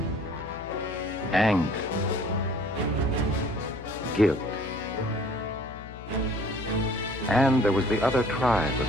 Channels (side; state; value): left; noise; hum, 14 dB below the sound